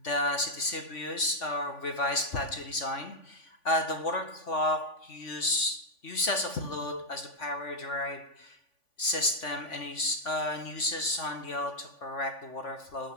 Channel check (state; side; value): late; right; 3.5 ms